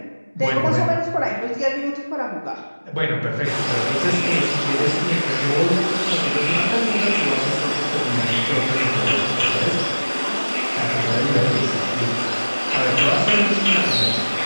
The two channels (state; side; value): inverted; both; correlation -1.00